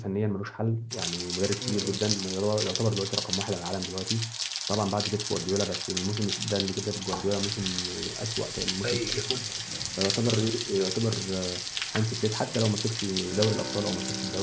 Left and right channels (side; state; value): both; identical; correlation 1.00